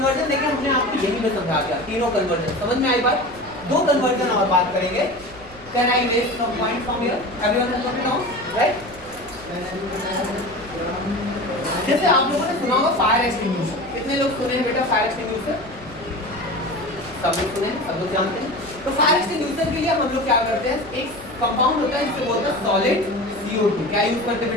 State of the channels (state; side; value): noise; right; rumble, 21 dB below the sound